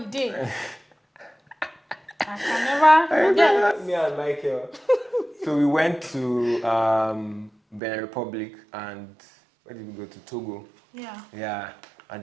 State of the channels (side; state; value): left; drops out; at 7.8 s